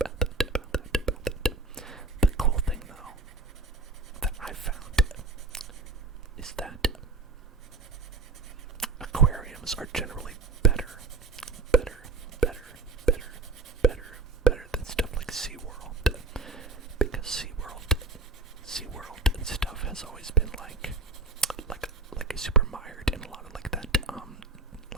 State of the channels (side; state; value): left; quieter; 3.9 dB